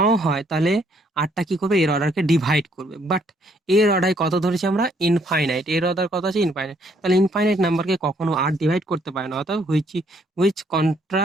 হয়, তাহলে আরটা কি করবে, এর অর্ডারকে ডিভাইড করবে। বাট এর অর্ডার কত ধরেছি আমরা, ইনফাইনাইট, এর অর্ডার কত আছে, ইনফাইনাইট। তাহলে ইনফাইনাইট নাম্বারকে কখনো আর ডিভাইড করতে পারে না, অর্থাৎ which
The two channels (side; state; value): both; normal; correlation 0.67